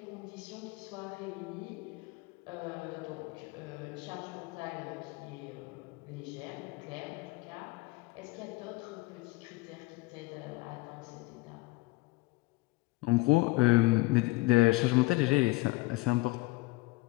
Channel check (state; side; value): quieter; right; 22.1 dB